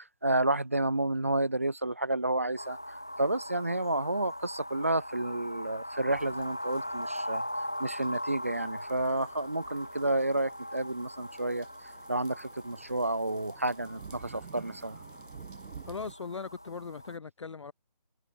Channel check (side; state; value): both; inverted; correlation -0.74